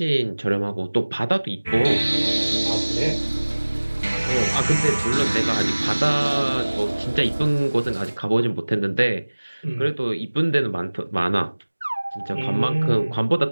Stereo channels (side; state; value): both; inverted; correlation -1.00